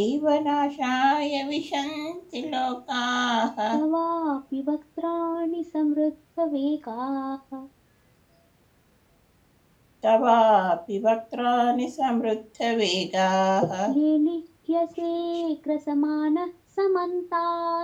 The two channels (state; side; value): identical; both; correlation 1.00